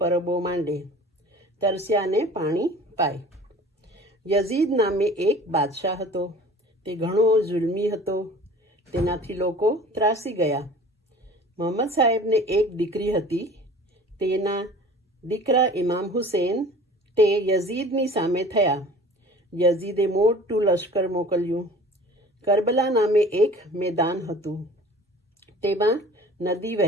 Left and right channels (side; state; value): both; normal; correlation 0.44